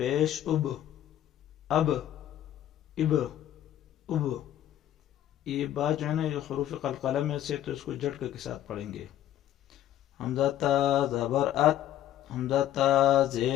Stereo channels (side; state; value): right; quieter; 12.1 dB